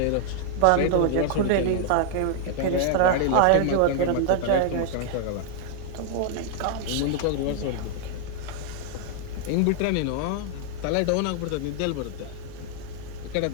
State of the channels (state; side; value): different; both; correlation -0.01